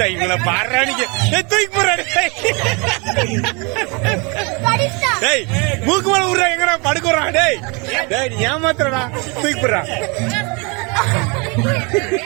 இவங்கள பாடுறானிக்கு தூக்கி போடுறாரு. டேய் மூக்கு மேல விடுறா எங்கடா படுக்குறான். டேய் டேய் நீ ஏமாத்துறடா தூக்கி போடுறா.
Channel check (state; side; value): quieter; left; 30.6 dB